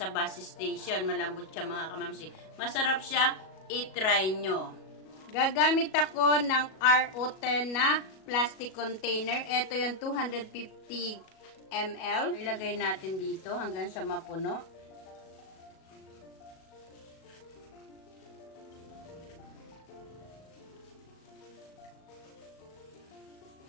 bus station. Malambot siya mga kamamsi. Masarap siya. I-try nyo. Gagamit ako ng RO10 na plastic container. Ito yung 250 ml. Ilagay natin dito hanggang sa mapuno.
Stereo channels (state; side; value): late; right; 37 ms